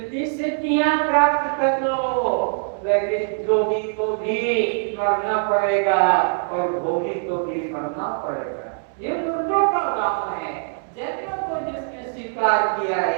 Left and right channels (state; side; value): silent; left; 64 dB below the other